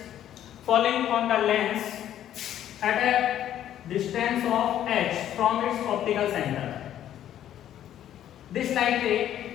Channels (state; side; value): quieter; right; 11.3 dB